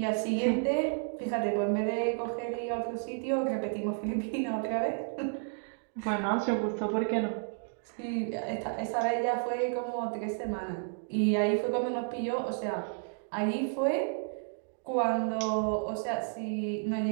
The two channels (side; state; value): left; silent; 57 dB below the other